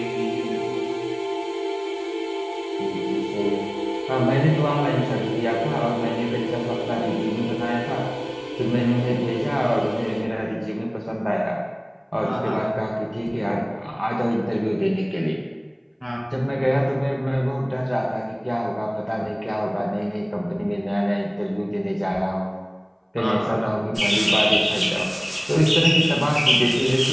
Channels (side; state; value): both; identical; correlation 1.00